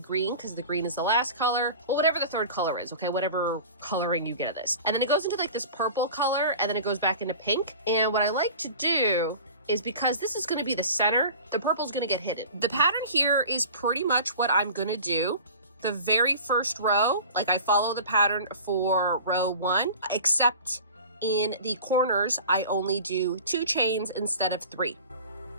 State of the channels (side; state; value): both; inverted; correlation -0.39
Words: because the green is the last color, or whatever the third color is, okay, whatever coloring you get of this, and then it goes into like this purple color, and then it goes back into pink. And what I like to do is, because this is going to be the center, the purple is going to get hidden. The pattern here is pretty much what I'm going to do. The very first row, like I follow the pattern for row 1, except in the corners I only do 2 chains instead of 3.